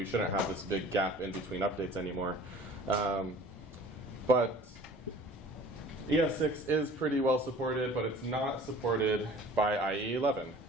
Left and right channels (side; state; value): both; normal; correlation 0.47